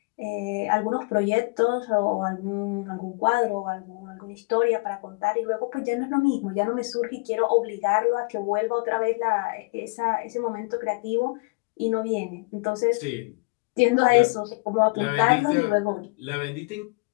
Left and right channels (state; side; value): quieter; right; 29.0 dB